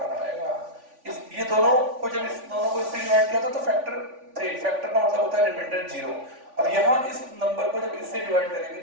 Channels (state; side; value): late; left; 3.5 ms